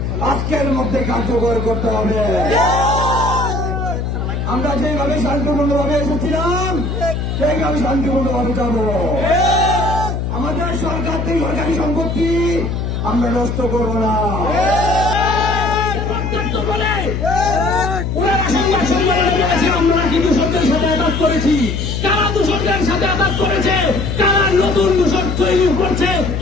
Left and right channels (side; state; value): left; noise; hum, 2 dB below the sound